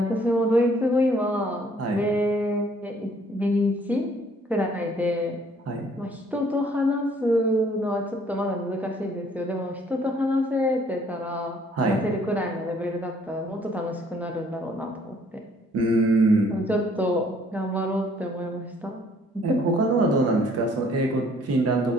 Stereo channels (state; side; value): normal; both; correlation 0.61